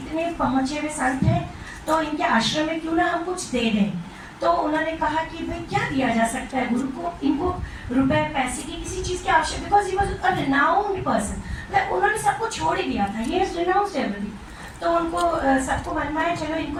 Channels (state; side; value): identical; both; correlation 1.00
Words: पहुँचे हुए संत हैं तो इनके आश्रम में क्यों ना हम कुछ दे दें. तो उन्होंने कहा कि भाई क्या दिया जा सकता है गुरु को. इनको रुपए पैसे की किसी चीज़ की आवश्यकता, because he was a renowned person. उन्होंने सबको छोड़ ही दिया था, ही हैज रिनाउंस्ड एवरीथिंग. तो उनको सबको मन में आया चलो इनको